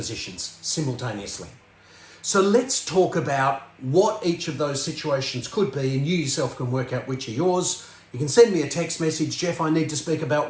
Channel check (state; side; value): identical; both; correlation 1.00